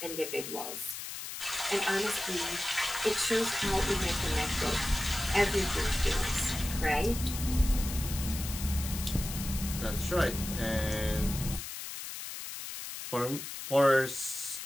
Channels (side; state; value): left; noise; hiss, 8 dB below the sound